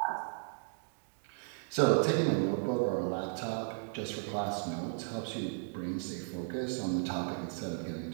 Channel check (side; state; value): left; silent; digital silence